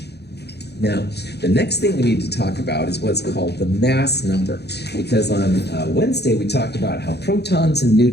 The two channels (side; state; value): right; late; 0.48 ms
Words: Now, the next thing we need to talk about is what's called the mass number, because on Wednesday we talked about how protons and